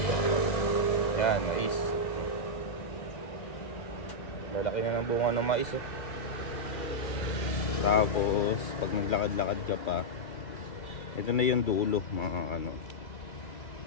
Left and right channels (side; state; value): right; late; 2.0 ms